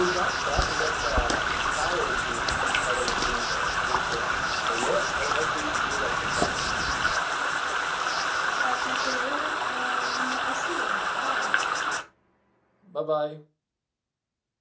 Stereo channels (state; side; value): identical; both; correlation 1.00